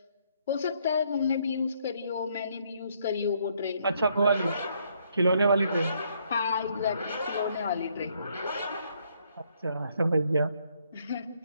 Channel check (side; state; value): both; inverted; correlation -0.70